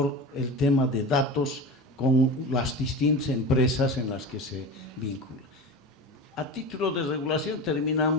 el tema de datos con las distintas empresas en las que se vincula. A título de regulación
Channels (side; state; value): both; normal; correlation 0.28